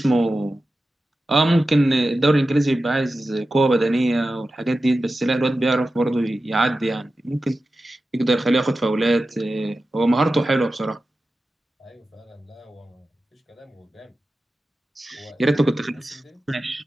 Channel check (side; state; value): both; normal; correlation 0.93